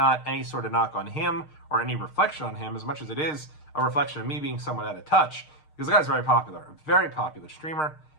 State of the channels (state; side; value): late; right; 6.5 ms